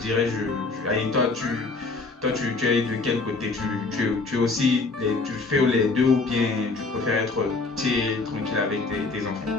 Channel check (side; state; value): right; quieter; 3.8 dB